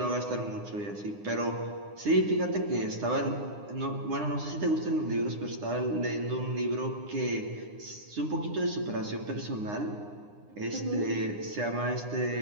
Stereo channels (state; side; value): late; left; 9.8 ms